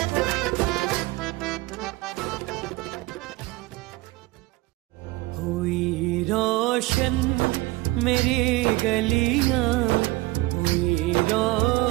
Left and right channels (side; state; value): left; quieter; 19.9 dB